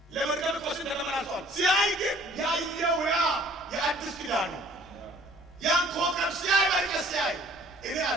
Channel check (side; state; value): both; normal; correlation 0.55